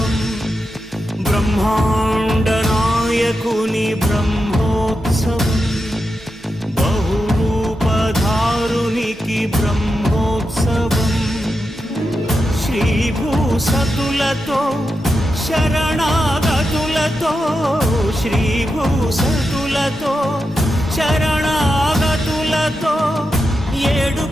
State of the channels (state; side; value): normal; both; correlation 0.88